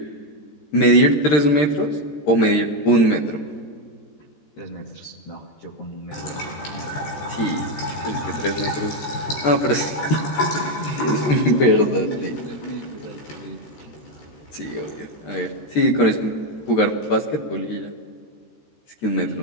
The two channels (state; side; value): late; right; 13 ms